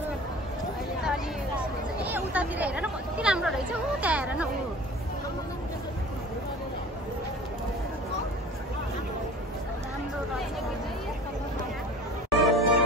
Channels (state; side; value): normal; both; correlation 0.42